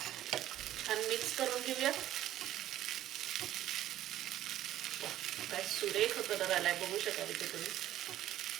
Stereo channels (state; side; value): quieter; left; 13.1 dB